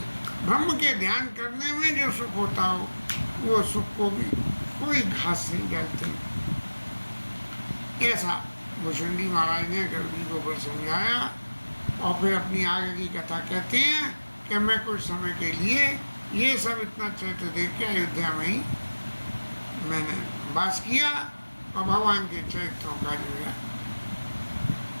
ब्रह्म के ध्यान करने में जो सुख होता हो वो सुख को भी कोई घास नहीं डालते। ऐसा भूषण जी महाराज ने गर्ग जी को ऊपर समझाया और फिर अपनी आगे की कथा कहते हैं कि मैं कुछ समय के लिए ये सब इतना चरित्र देख के अयोध्या में ही मैंने वास किया और भगवान के चरित्रों का जो है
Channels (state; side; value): inverted; both; correlation -1.00